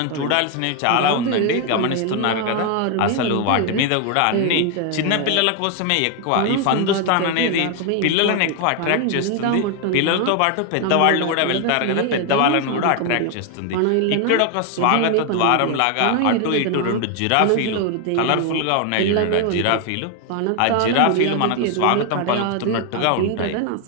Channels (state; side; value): different; both; correlation 0.01